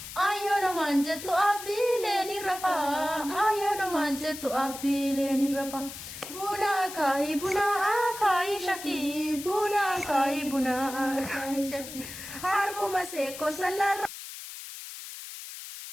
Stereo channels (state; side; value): noise; left; hiss, 11 dB below the sound